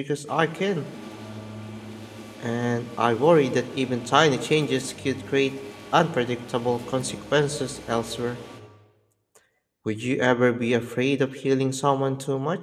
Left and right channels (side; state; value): both; identical; correlation 1.00